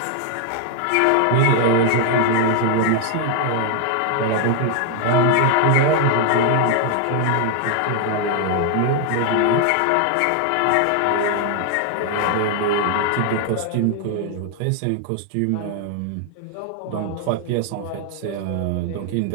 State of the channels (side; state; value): both; different; correlation 0.00